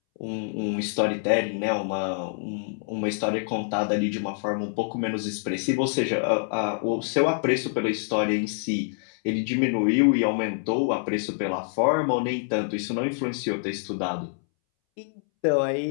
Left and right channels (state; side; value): silent; right; 61 dB below the other